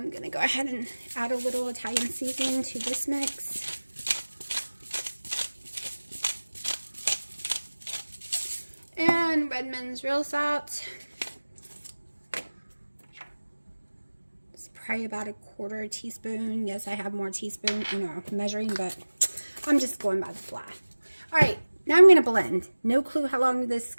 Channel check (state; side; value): inverted; both; correlation -1.00